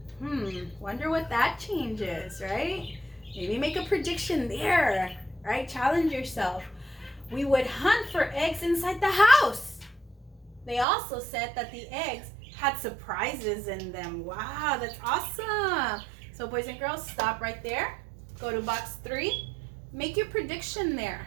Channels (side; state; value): left; drops out; at 10.9 s